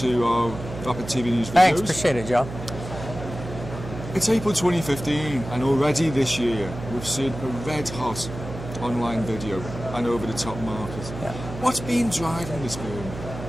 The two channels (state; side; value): noise; right; hum, 10 dB below the sound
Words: our Rapid TV News videos. Thanks, appreciate it, Joe. It's April 2015 and already this year we've seen a red hot online video and over-the-top market. Yeah. What's been driving this boom?